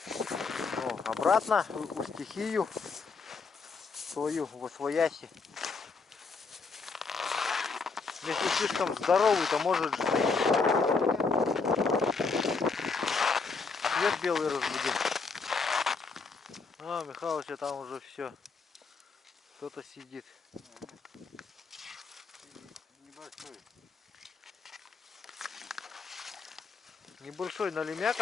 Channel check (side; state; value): right; quieter; 4.6 dB